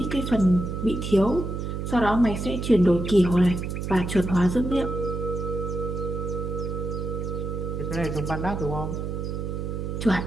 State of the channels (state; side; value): noise; right; hum, 4 dB below the sound